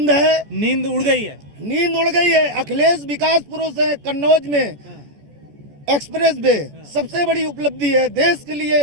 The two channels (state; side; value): late; left; 14 ms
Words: है, नींद उड़ गई है। नींद उड़ गई है। अखिलेश विकास पुरुष है। कन्नौज में एक्सप्रेस वे सबसे बड़ी उपलब्धि है देश के लिए।